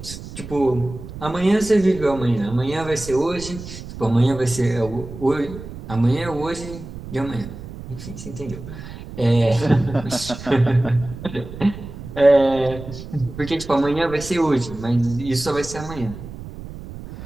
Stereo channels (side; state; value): right; noise; rumble, 12 dB below the sound